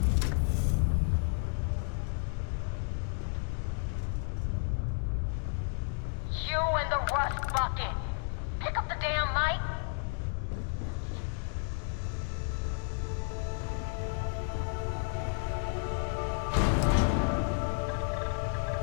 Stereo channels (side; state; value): right; silent; 56 dB below the other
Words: You and the rust bucket. Pick up the damn mic.